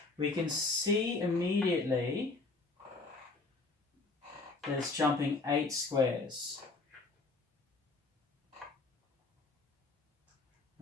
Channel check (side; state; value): right; quieter; 3.6 dB